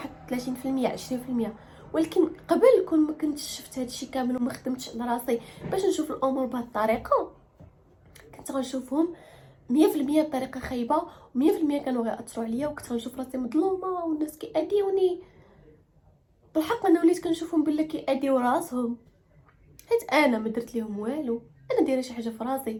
30% 20%، ولكن قبل كون ما كنتش شفت هادشي كامل وما خدمتش على راسي باش نشوف الامور بهذه الطريقه، كنت غنشوفهم 100% بطريقه خايبه، و100% كانوا غيأثروا عليا، وكنت غنشوف راسي مظلومه والناس كيأذيوني. بالحق انا وليت كنشوفهم بلا كيأذيو راسهم، حيت انا ما درت لهم والو. انا دايره شي حاجه في راسي،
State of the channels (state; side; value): identical; both; correlation 1.00